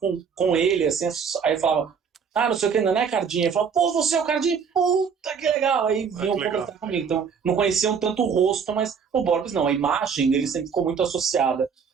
ele, assim, aí eu falava, não sei o que, não é Cardim. Ele falava, pô, você é o Cardim? Puta, que legal. Aí vinham conversar comigo. Então, não conheciam tanto o rosto, mas o Borbs não. A imagem dele sempre ficou muito associada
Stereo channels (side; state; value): left; quieter; 6.4 dB